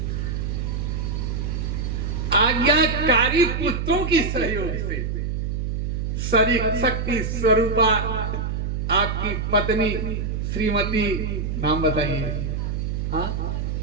आज्ञाकारी पुत्रों की सहयोग से, शक्ति स्वरूपा आपकी पत्नी श्रीमती, नाम बताइए, हाँ,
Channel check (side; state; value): right; noise; hum, 2 dB below the sound